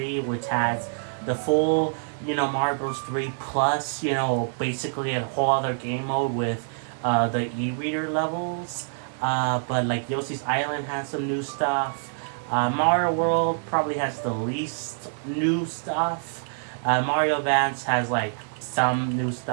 which has the full, you know, Mario Bros. 3 plus, you know, basically a whole other game mode with the e-reader levels. But like Yoshi's Island has some new stuff. Mario World probably has the least new stuff. Mario Advance has like some new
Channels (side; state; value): left; silent; 56 dB below the other